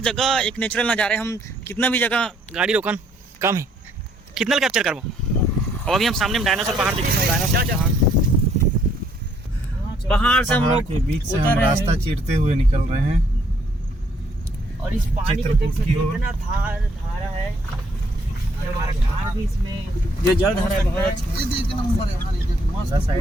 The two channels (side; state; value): both; normal; correlation 0.67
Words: जगह एक नेचुरल नज़ारा है। हम कितना भी जगह गाड़ी रोकन कम है, कितना कैप्चर करबो। और अभी हम सामने में डायनासोर पहाड़ देखेंगे। पहाड़ से हम लोग के बीच से हम रास्ता चीरते हुए निकल रहे हैं और इस पानी को देख सकते हैं कितना धारा है। हमारा कार भी इसमें जो जल धारा है बहुत अच्छा